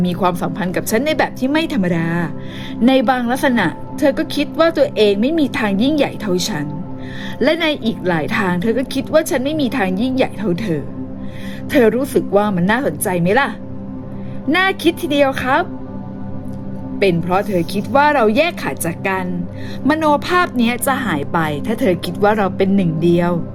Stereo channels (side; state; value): both; identical; correlation 1.00